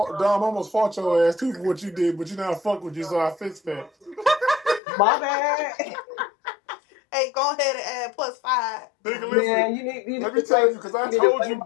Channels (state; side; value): drops out; right; at 4.8 s